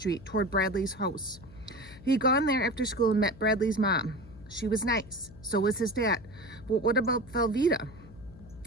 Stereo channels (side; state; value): left; noise; hum, 20 dB below the sound